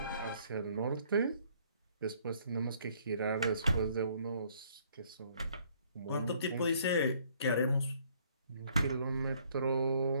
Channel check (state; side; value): inverted; both; correlation -0.63